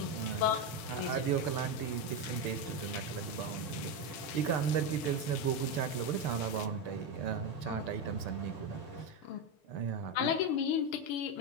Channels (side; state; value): right; late; 6.8 ms